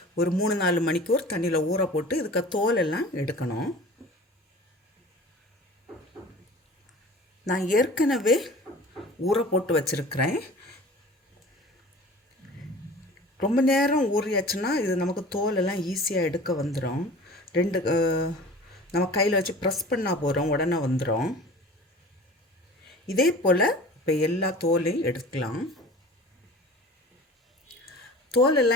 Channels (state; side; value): normal; both; correlation 0.41